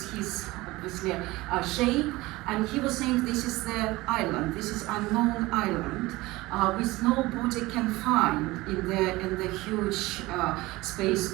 his obviously shape, and he was saying this is the island, this is unknown island, which nobody can find in the huge space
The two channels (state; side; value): quieter; left; 20.1 dB